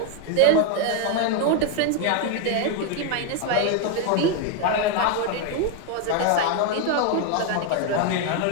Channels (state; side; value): different; both; correlation 0.01